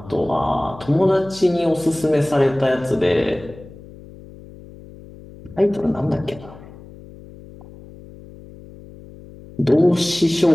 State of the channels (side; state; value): left; noise; hum, 19 dB below the sound